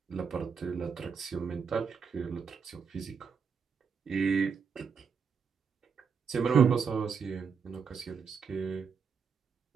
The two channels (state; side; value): quieter; left; 6.1 dB